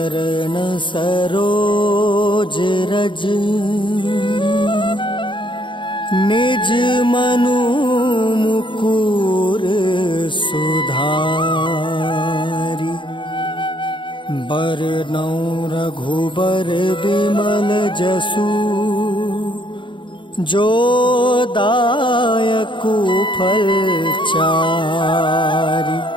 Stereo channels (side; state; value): right; late; 0.23 ms